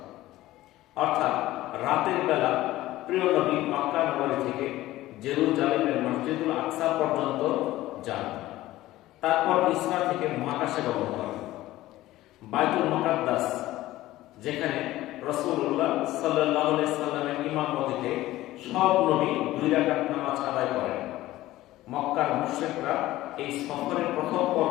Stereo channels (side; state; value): right; quieter; 16.2 dB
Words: অর্থাৎ রাতের বেলা প্রিয় নবী মক্কা নগরী থেকে জেরুজালেমের মসজিদুল আকসা পর্যন্ত যান। তারপর ইসরা থেকে মহাকাশে গমন করেন। বাইতুল মুকাদ্দাস, যেখানে রাসূলুল্লাহ সাল্লাল্লাহু আলাইহি সাল্লামের ইমামতিতে সব নবী 2 রাকাত নামাজ আদায় করেন। মক্কার মুশরিকরা এই সফরের প্রথম